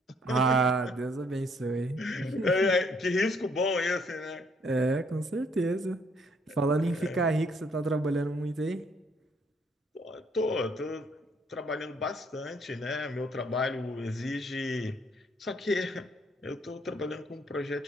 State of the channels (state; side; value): normal; both; correlation 0.66